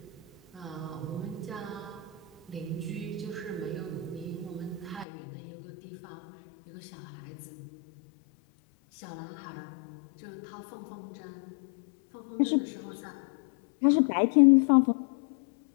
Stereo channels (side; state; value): right; drops out; at 5.1 s